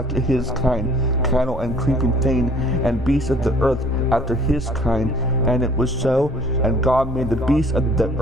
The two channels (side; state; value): both; normal; correlation 0.55